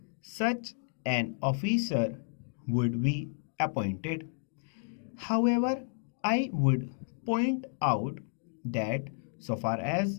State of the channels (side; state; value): right; silent; digital silence